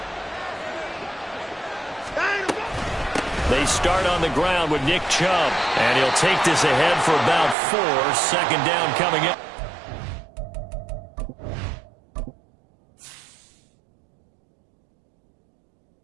They start on the ground with Nick Chubb, and he'll take this ahead for about 4. 2nd down coming in.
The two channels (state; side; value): drops out; left; at 7.6 s